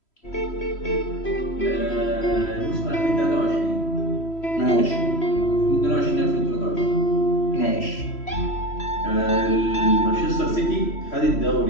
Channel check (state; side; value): late; right; 3.1 ms